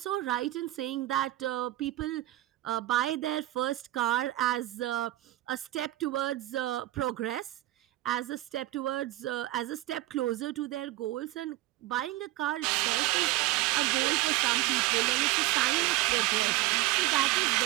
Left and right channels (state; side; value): quieter; left; 16.7 dB